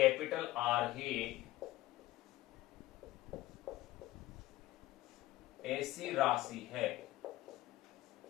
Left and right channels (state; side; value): quieter; right; 17.0 dB